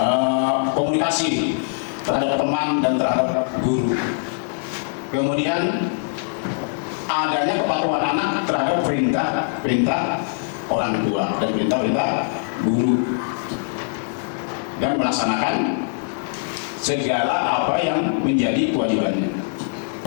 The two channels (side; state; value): right; silent; 64 dB below the other